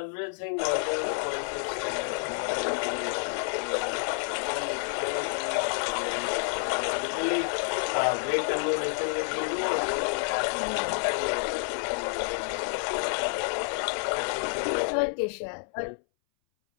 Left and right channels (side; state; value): right; silent; 59 dB below the other